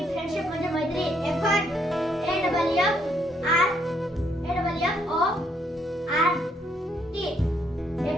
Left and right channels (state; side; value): normal; both; correlation 0.72